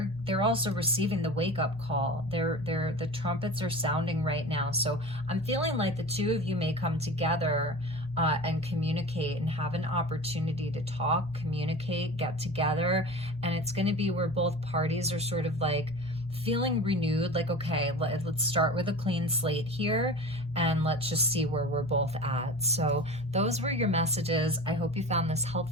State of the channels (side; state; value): both; normal; correlation 0.34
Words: also receiving the wake-up call. The trumpets are sounding right now. So I'm feeling like the two of you may come together and communicate and have an opportunity to talk, communicate, get together, and it's going to be where both parties are sort of like feeling renewed, like, okay, let's start with a clean slate here, and let's just see where we're both at. So those were your messages. I hope you found this